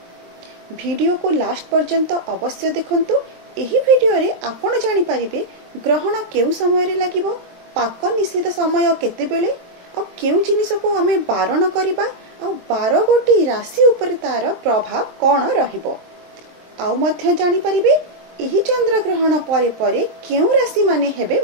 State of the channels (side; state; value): left; late; 23 ms